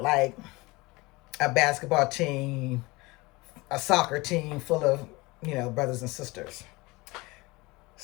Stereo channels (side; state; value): right; quieter; 23.2 dB